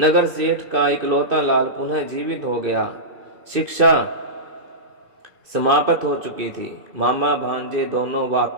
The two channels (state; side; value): late; left; 2.5 ms